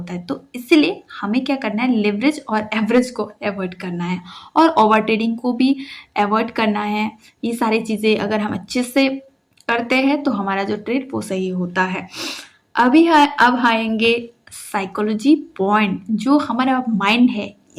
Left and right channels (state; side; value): identical; both; correlation 1.00